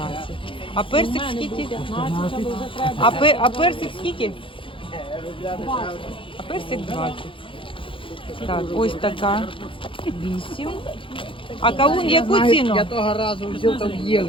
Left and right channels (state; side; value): late; right; 0.25 ms